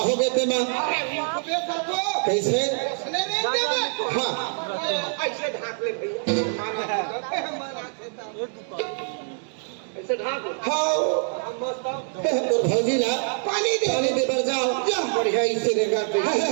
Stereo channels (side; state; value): left; silent; 62 dB below the other